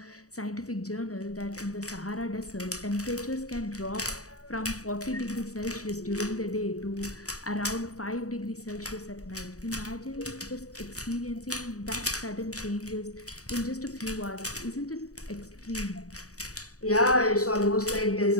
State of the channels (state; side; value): late; right; 0.66 ms